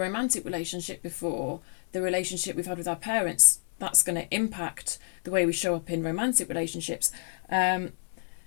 relationship before, the relationship we've had with our parents, that's going to impact the way we show up in romantic relationships. My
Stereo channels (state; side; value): silent; right; digital silence